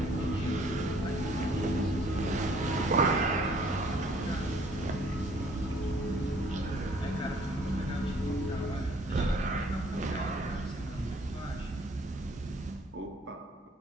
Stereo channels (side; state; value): both; normal; correlation 0.59